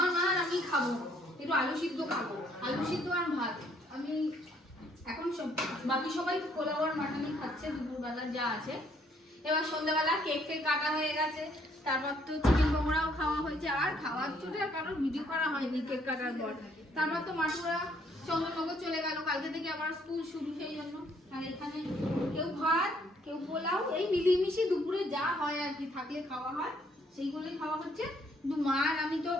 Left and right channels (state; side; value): normal; both; correlation 0.66